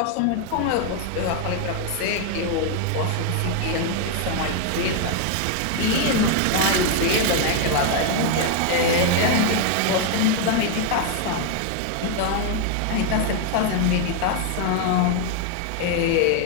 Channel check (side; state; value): both; different; correlation 0.00